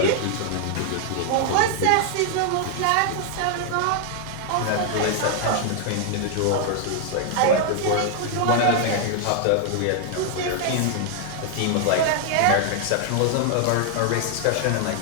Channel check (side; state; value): both; different; correlation 0.00